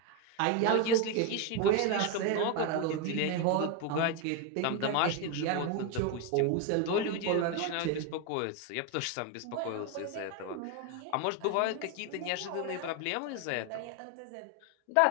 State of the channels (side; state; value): both; different; correlation 0.01